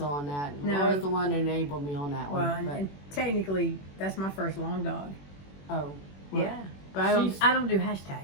on that. No. Laura's the one that enabled me on that one. Well, and technically, that's my first long dog. Oh. Well, yeah. But I don't do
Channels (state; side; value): late; right; 21 ms